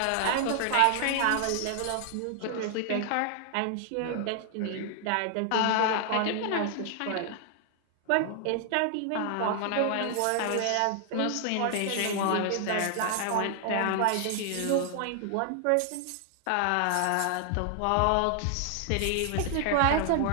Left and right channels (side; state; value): both; different; correlation 0.00